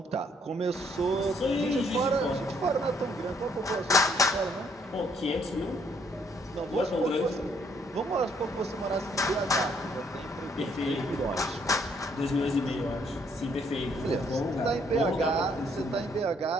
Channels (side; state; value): both; normal; correlation 0.68